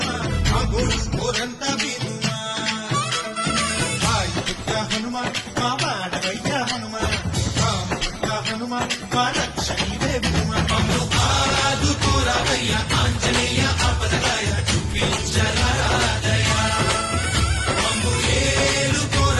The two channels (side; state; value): both; identical; correlation 1.00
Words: మా గోడు కోరంతా వినుమా వాయుపుత్ర హనుమా మా వాడవయ్య హనుమా రామపుత్ర హనుమా మా రక్షణీవే వినుమా మమ్ము ఆదుకోరావయ్య ఆంజనేయ ఆపదరాయ చూపించరాదయ మమ్ము